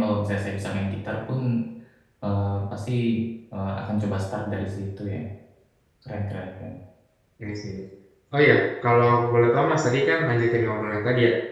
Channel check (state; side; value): identical; both; correlation 1.00